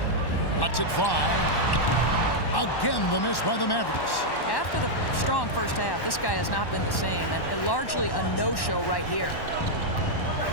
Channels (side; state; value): right; late; 1.1 ms